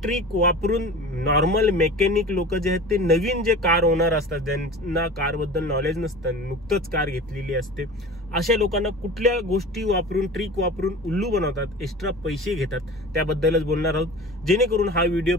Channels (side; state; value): both; normal; correlation 0.37